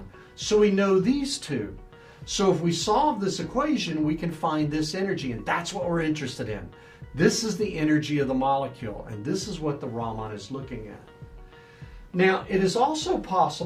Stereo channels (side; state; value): both; identical; correlation 1.00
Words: So we know these two. So if we solve this equation, we can find this energy, and that's what we're interested in. This is the energy of the molecule, and this is what the Raman is looking at. Now, it is also